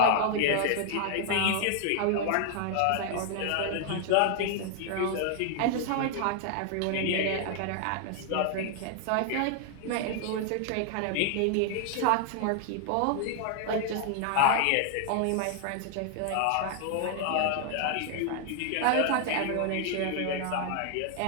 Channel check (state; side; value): different; both; correlation 0.00